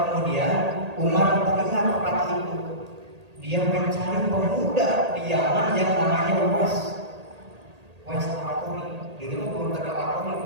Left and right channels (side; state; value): left; late; 1.8 ms